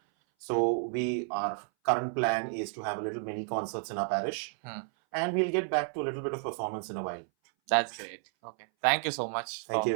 So our current plan is to have a little mini concerts in our parish, and we'll get back to a little bit of performance in a while. That's great. Okay. Thank you so much. Thank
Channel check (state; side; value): silent; left; 57 dB below the other